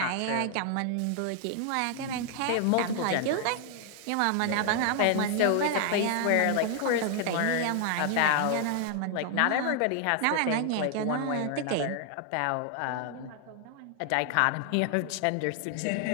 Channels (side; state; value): both; different; correlation 0.00